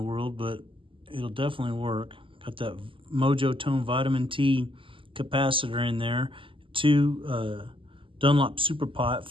but it'll definitely work. Got that Mojo Tone Vitamin T capacitor in there. 2 Dunlop Super Pot,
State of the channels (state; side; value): late; left; 0.25 ms